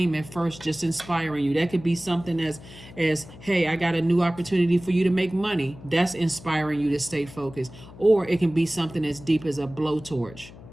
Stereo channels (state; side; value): noise; left; hum, 18 dB below the sound